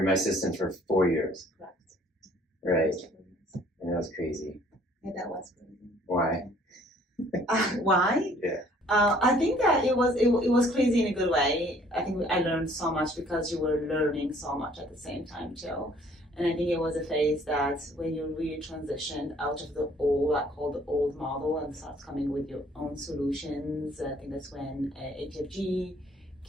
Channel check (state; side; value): normal; both; correlation 0.58